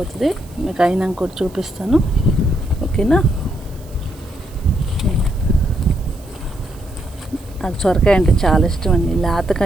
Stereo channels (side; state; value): right; noise; hiss, 25 dB below the sound